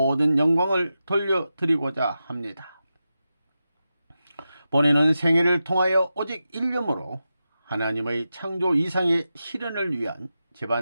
영광을 돌려드리고자 합니다. 본인은 생애를 통하여 오직 일념으로 하나님의 창조 이상의 실현을 위한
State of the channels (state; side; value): inverted; both; correlation -0.91